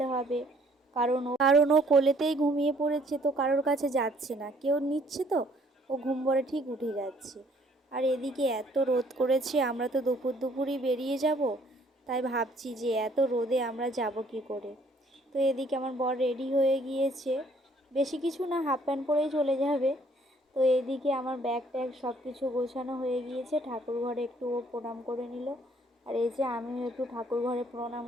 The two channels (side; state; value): both; normal; correlation 0.62